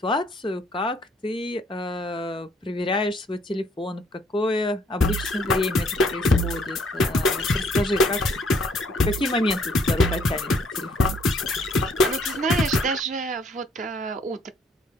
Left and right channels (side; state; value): both; normal; correlation 0.64